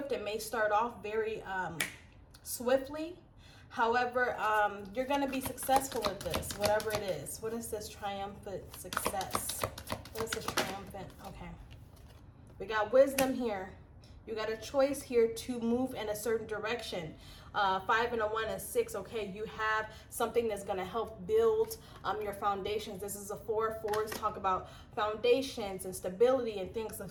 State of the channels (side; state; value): both; identical; correlation 1.00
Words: It may start off very swiftly. However, you're going to be successful at this, whatever it is. What is this triumphant success? What is this triumphant? Okay. We got wisdom here. You got a choice here to move in a certain direction. 5 and a 1 is 6. Okay, you have something that's going to help build your foundations. This is a 4. 4s talk about foundations and stability and things of